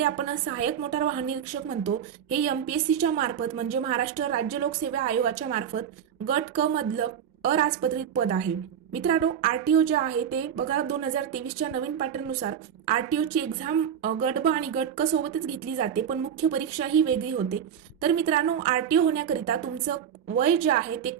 आपण सहाय्यक मोटार वाहन निरीक्षक म्हणतो, हे एमपीएससीच्या मार्फत म्हणजे महाराष्ट्र राज्य लोकसेवा आयोगाच्या मार्फत गट क मधलं अराजपत्रित पद आहे. मित्रांनो, आरटीओ जे आहे ते बघा, 2023च्या नवीन पॅटर्ननुसार आरटीओची एक्झाम गट ब आणि गट क सोबतच घेतली जाते, पण मुख्य परीक्षा ही वेगळी होते. तर मित्रांनो, आरटीओ होण्याकरिता तुमचं वय जे आहे ते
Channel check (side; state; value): left; quieter; 8.7 dB